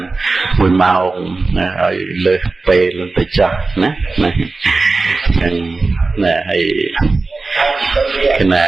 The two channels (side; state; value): left; quieter; 3.7 dB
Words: 1ម៉ោងណាឲ្យលើសពេលទៅចោះណាហ្នឹងណាហើយគណ